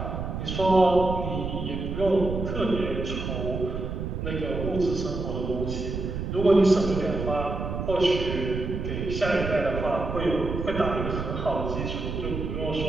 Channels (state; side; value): noise; right; rumble, 4 dB below the sound